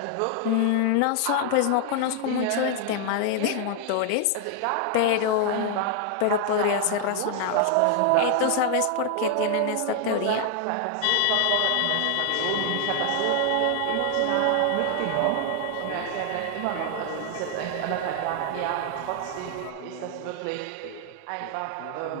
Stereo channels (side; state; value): both; different; correlation 0.00